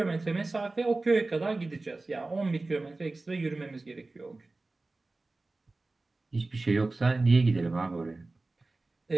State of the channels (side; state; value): left; quieter; 3.3 dB